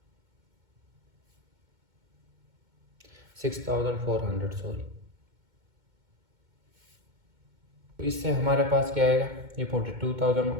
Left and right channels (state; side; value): late; left; 2.2 ms